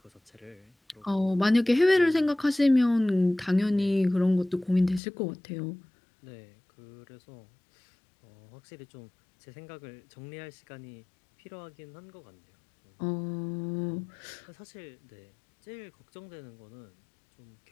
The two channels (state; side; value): drops out; right; at 5.0 s